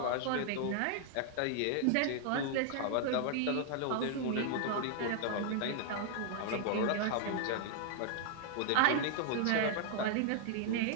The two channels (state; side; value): different; both; correlation 0.00